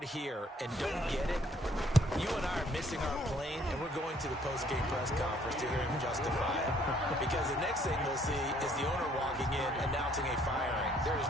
here and don't get it, you and I are missing our plane, and we're going to the post-game press conference to hear him justify it. Because the next thing we'll see is the owner walking in announcing a firing. There is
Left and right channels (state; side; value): normal; both; correlation 0.63